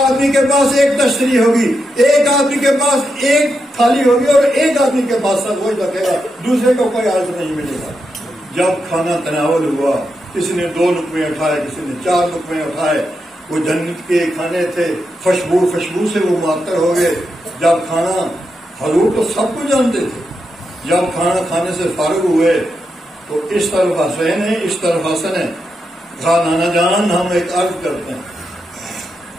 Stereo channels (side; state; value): both; normal; correlation 0.85